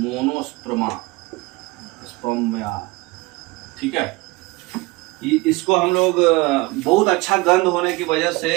स्पर्मा, ठीक है। इसको हम लोग बहुत अच्छा गंध होने की वजह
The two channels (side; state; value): left; quieter; 23.1 dB